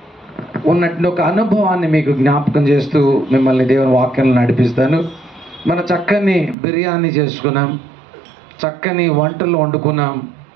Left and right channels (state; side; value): drops out; left; at 6.6 s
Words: ఉన్నట్టు ఒక అనుభవాన్ని మీకు జ్ఞాపకం చేస్తూ మిమ్మల్ని దేవుని వాక్యాలను నడిపిస్తాను. మన చక్కని బిర్యానీ చేసుకున్నాం, చక్కని వంటలు వండుకున్నాం,